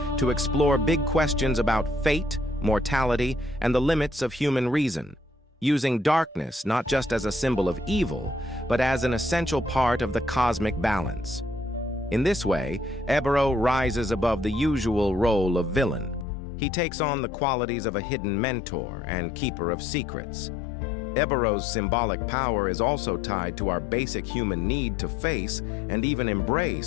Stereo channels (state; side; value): drops out; right; at 16.2 s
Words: to explore big questions about fate, mortality, and the limits of human reason, using darkness not just as a symbol of evil, but as an essential part of the cosmic balance. In this way, Ébero rises above the usual role of villain. He takes on the qualities of a hidden mentor and keeper of secrets. Ébero's symbolic power is also tied to our basic human need to face and even